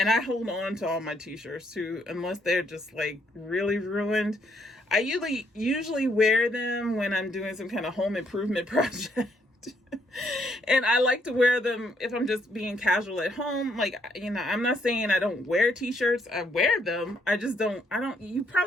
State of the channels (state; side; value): normal; both; correlation 0.71